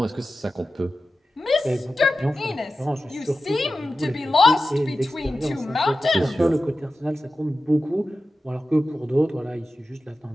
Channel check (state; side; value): normal; both; correlation 0.93